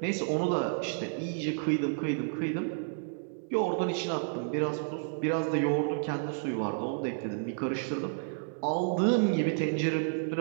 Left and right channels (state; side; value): silent; left; digital silence